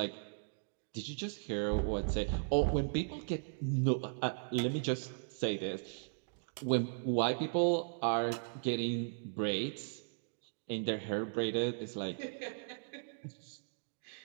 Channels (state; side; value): silent; left; digital silence